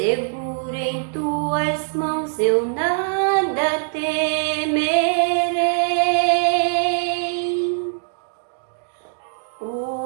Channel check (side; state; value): left; silent; digital silence